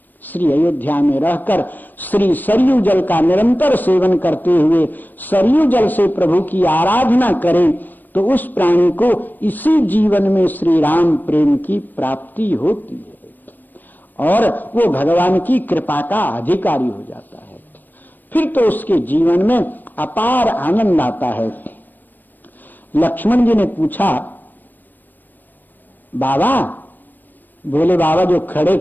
श्री अयोध्या में रहकर श्री सरयू जल का निरंतर सेवन करते हुए सरयू जल से प्रभु की आराधना करें तो उस प्राणी को इसी जीवन में श्री राम प्रेम की प्राप्ति होती है और वो भगवान की कृपा का अधिकारी हो जाता है। फिर तो उसके जीवन में अपार आनंद आता है। लक्ष्मण जी ने पूछा, बाबा? बोले, बाबा जो खड़े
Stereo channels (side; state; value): right; late; 0.089 ms